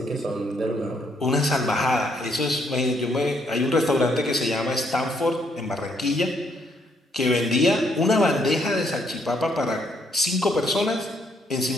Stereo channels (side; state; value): both; normal; correlation 0.71